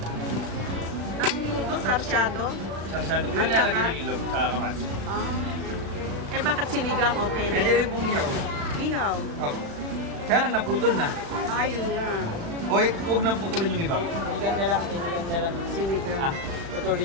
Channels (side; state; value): left; late; 36 ms